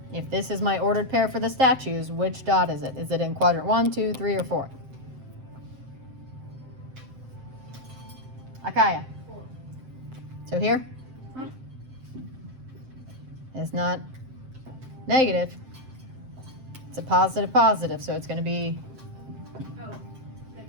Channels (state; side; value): late; left; 7.7 ms